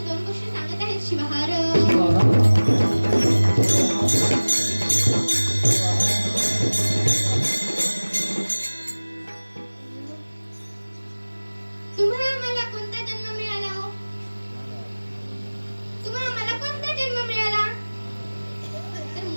2 गोष्टी सांगत आहेत शिवहार. तुम्हा आम्हाला कोणता जन्म मिळाला हो? तुम्हा आम्हाला कोणता जन्म मिळाला तर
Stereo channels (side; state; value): both; inverted; correlation -1.00